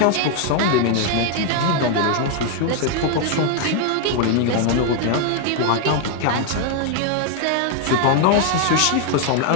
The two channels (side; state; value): both; different; correlation 0.01